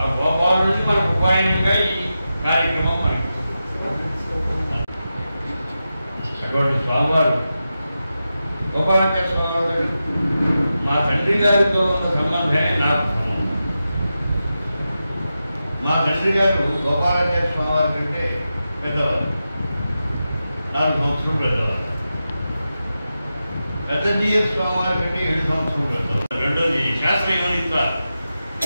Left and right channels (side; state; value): both; inverted; correlation -0.91